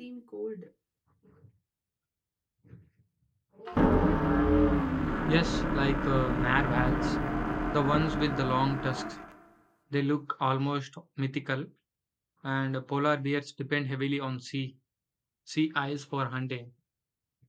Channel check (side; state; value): both; identical; correlation 1.00